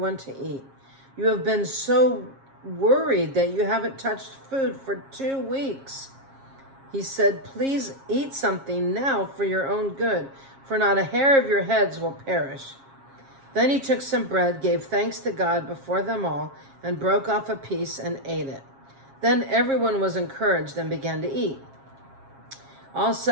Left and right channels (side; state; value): left; late; 7.4 ms